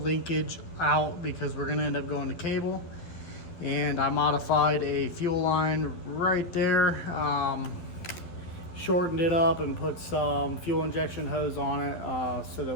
linkage out because we're gonna end up going to cable, and I modified a fuel line right there, shortened it up and put some fuel injection hose on it so that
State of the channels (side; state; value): right; late; 11 ms